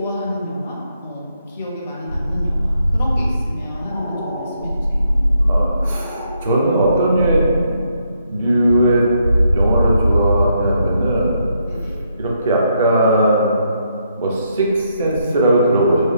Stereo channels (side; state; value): both; inverted; correlation -0.76